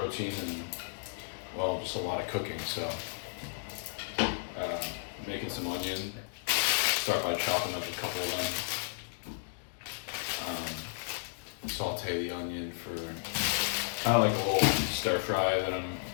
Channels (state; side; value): silent; right; digital silence